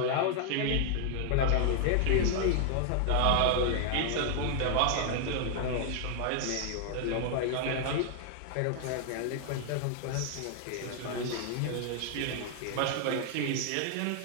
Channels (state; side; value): different; both; correlation 0.00